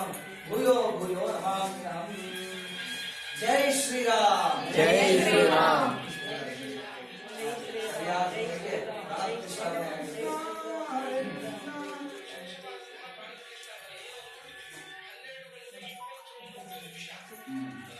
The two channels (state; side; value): identical; both; correlation 1.00